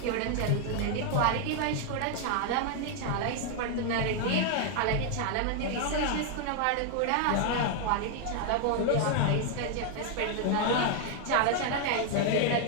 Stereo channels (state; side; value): different; both; correlation 0.00